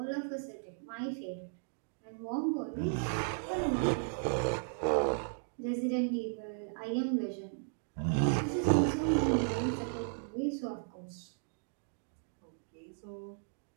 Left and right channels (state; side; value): silent; left; digital silence